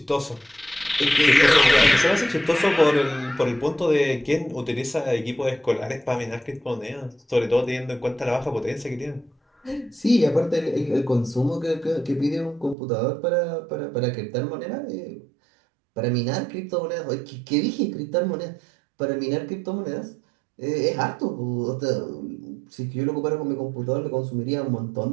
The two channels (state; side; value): drops out; left; at 12.8 s